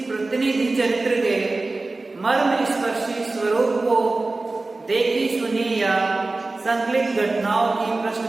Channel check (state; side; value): quieter; left; 3.3 dB